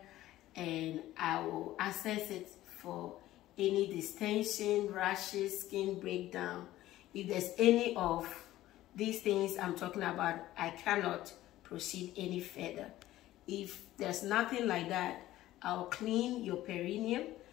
and I will assess it for any distension, rashes, skin breakdown. If there's any of these things I'm talking about, I cannot proceed any further. If there's nothing like that, I'll clean your perineum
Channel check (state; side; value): quieter; right; 15.1 dB